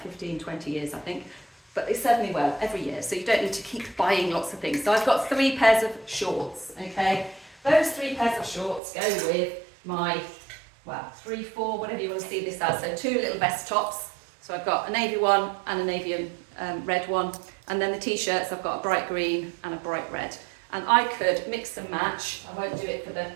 15, 20 years, I think. But they serve me well every year, so you don't need to keep buying lots of things. So I've got 3 pairs of shorts, okay? Those 3 pairs of shorts go with my, 3, 4, whatever you want to see this as. So 2 little vest tops. So I've got a navy one and a navy and red one. And then the t-shirts, I've got a bright green and a bright red. And I could mix and match. I won't do it for the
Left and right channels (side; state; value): left; drops out; at 8.8 s